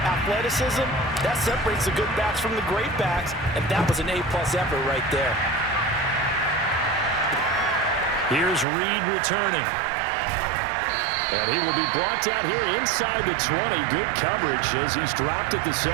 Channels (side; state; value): left; drops out; at 8.7 s